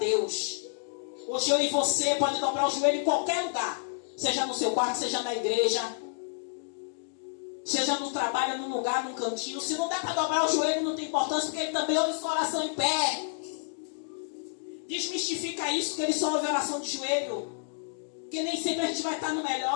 Hoje eu e você pode dobrar o joelho em qualquer lugar, seja no seu quarto, seja na igreja, seja no trabalho, num lugar, num cantinho. Se não der para dobrar o joelho, não tem importância, porque ele também ouve sua oração em pé. Desmistifica isso, que ele só ouve oração de joelho. Porque nem sempre a gente vai estar no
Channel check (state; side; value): silent; right; digital silence